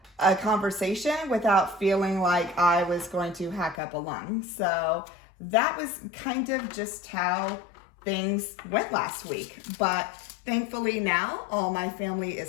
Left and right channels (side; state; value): right; drops out; at 3.8 s